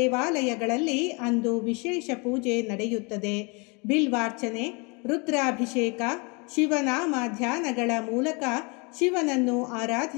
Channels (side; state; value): right; quieter; 30.7 dB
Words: ಅಂದು ವಿಶೇಷ ಪೂಜೆ ನಡೆಯುತ್ತದೆ. ಬಿಲ್ವಾರ್ಚನೆ, ರುದ್ರಾಭಿಷೇಕ, ಶಿವನಾಮ ಧ್ಯಾನಗಳ ಮೂಲಕ ಶಿವನನ್ನು